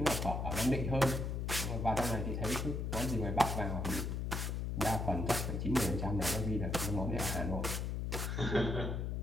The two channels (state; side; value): noise; left; hum, 1 dB below the sound